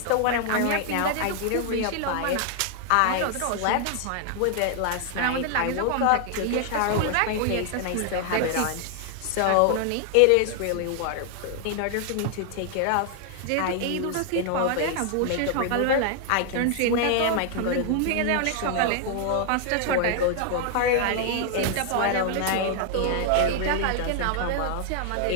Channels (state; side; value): different; both; correlation 0.00